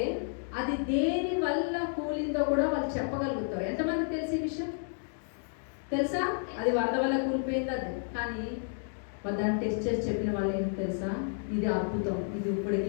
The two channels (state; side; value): silent; right; digital silence